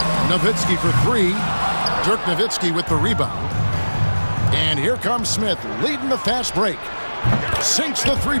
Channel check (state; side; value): inverted; both; correlation -1.00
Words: Nowitzki for 3. Dirk Nowitzki with the rebound. And here comes Smith, leading the fast break. Sinks the